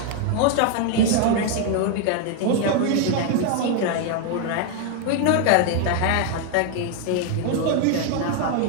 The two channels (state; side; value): different; both; correlation 0.00